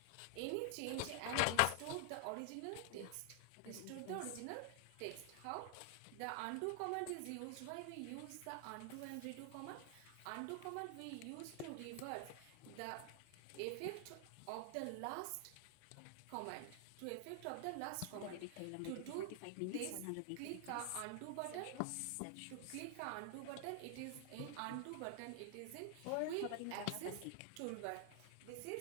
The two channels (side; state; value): both; different; correlation 0.00